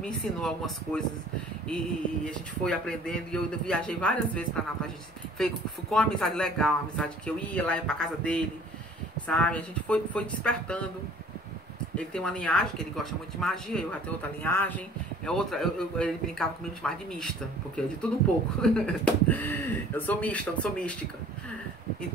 ensinou algumas coisas e a gente foi aprendendo. E eu viajei várias vezes para Natal. A gente ficou uma amizade legal, uma amizade que eu ia lá para casa dele, sabe? A gente foi despertando. Ele tem uma linhagem que ele gosta muito de magia, eu já tenho outra linhagem. Ele brincava comigo de chamar de mista, porque é de tudo um pouco. Eu sou mista, não sou mística.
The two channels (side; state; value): both; normal; correlation 0.51